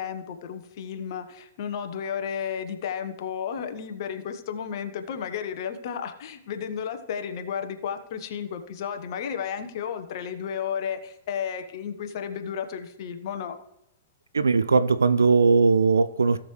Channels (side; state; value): both; inverted; correlation -0.76